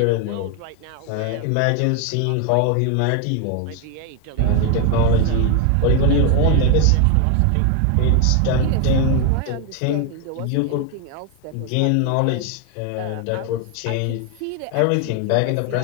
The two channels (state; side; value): different; both; correlation 0.01